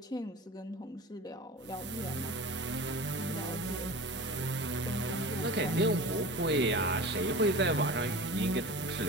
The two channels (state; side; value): normal; both; correlation 0.34